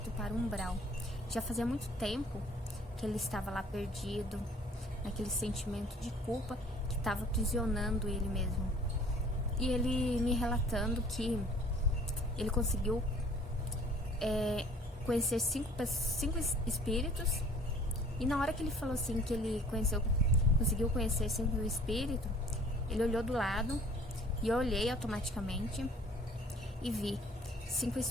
para o umbral. Já fazia muito tempo que ele estava lá perdido, naquele sentimento de culpa que estava aprisionando ele mesmo. E ele me relatando que ele conseguiu conhecer cinco espíritos. E na hora que ele falou assim, que ele conseguiu conhecer 5 espíritos, ele olhou do lado e eu olhei automaticamente e vi 5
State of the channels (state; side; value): normal; both; correlation 0.53